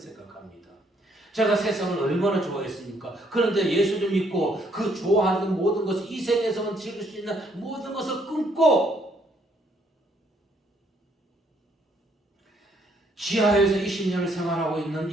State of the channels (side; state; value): both; normal; correlation 0.68